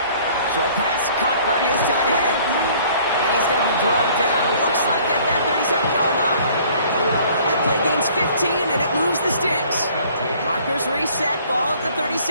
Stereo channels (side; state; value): both; inverted; correlation -0.55